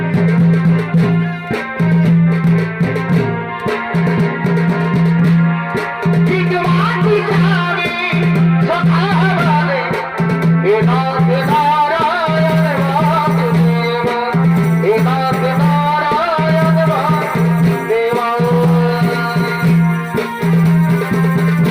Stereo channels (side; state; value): both; identical; correlation 1.00